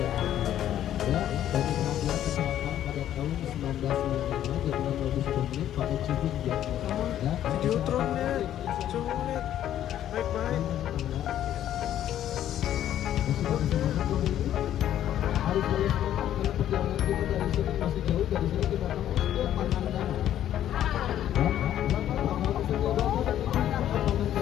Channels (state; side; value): quieter; right; 11.5 dB